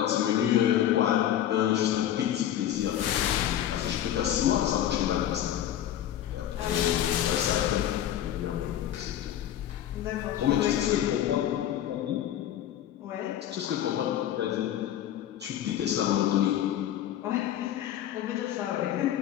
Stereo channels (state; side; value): quieter; right; 11.4 dB